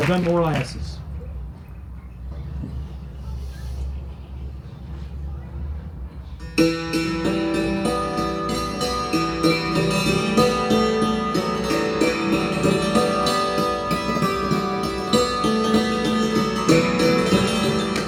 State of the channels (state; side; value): identical; both; correlation 1.00